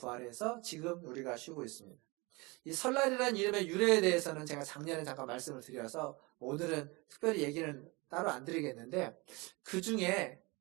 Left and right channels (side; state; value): left; quieter; 25.8 dB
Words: 지금 우리가 쉬고 있습니다. 이 설날이라는 이름의 유래에 대해서는 제가 작년에 잠깐 말씀을 드려서 오늘은 특별히 얘기는 따로 안 드리겠는데, 그 중에